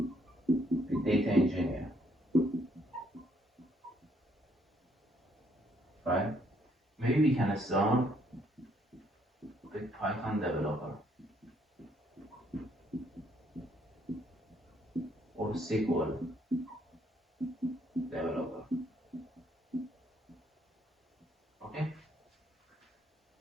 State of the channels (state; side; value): normal; both; correlation 0.69